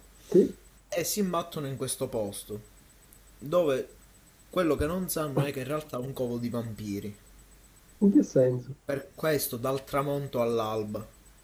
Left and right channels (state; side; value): identical; both; correlation 1.00